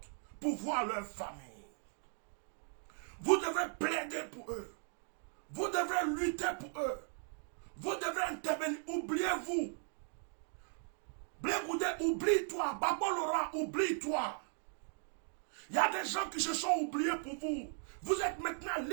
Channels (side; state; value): left; silent; 52 dB below the other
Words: pour voir leur famille. Vous devez plaider pour eux. Vous devez lutter pour eux. Vous devez intervenir. Oubliez-vous. Blé Goudé, oublie-toi. Gbagbo Laurent, oublie-toi. Il y a des gens qui se sont oubliés pour vous. Vous êtes maintenant